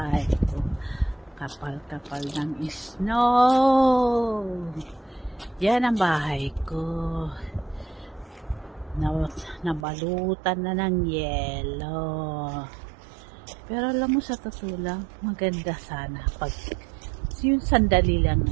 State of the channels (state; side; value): drops out; left; at 9.9 s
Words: ko. Kapal-kapal ng snow. Yan ang bahay ko. Nabalutan na ng yelo. Pero alam mo, sa totoo lang, maganda sana pag yung sandali lang